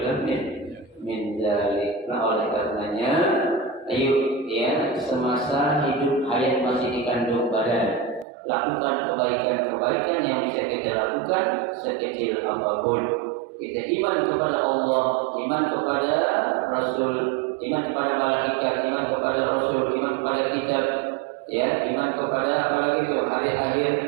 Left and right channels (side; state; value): left; drops out; at 8.2 s